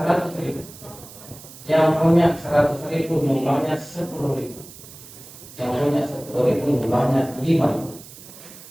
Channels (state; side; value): noise; right; hiss, 18 dB below the sound